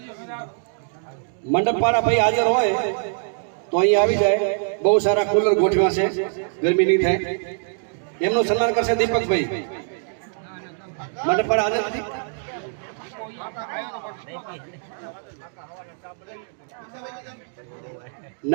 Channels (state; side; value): silent; left; 63 dB below the other